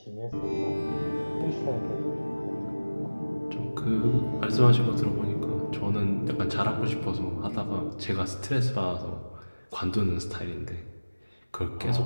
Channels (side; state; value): both; inverted; correlation -1.00